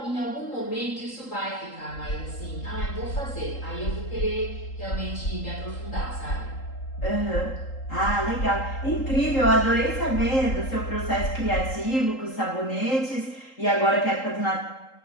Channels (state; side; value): late; right; 3.8 ms